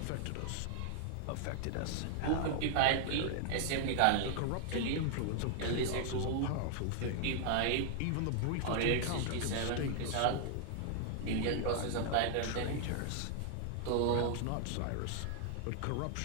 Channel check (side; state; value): both; different; correlation 0.00